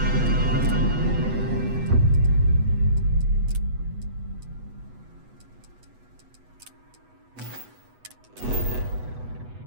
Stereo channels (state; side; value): late; left; 8.1 ms